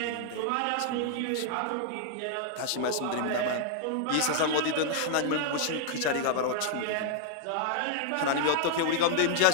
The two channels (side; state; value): both; different; correlation -0.01